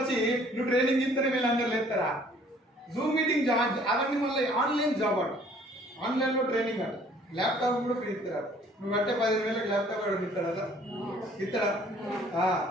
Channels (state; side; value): normal; both; correlation 0.57